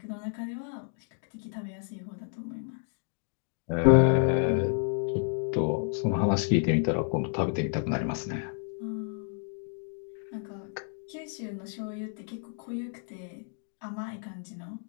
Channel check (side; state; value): right; silent; 57 dB below the other